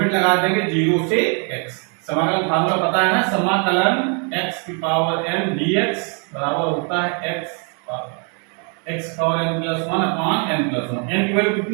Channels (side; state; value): left; quieter; 38.5 dB